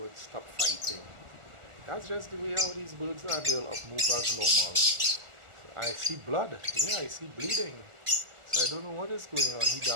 stop fighting. That's just the way how these birds are. They'll up move as normal. I see blood. Yeah, I see bleeding. So I don't know what is going on. He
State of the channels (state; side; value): late; left; 1.4 ms